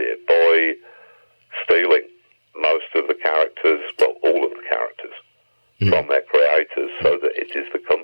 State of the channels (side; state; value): both; inverted; correlation -1.00